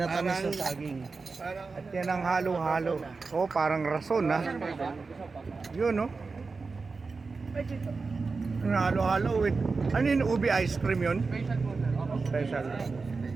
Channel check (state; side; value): quieter; left; 4.3 dB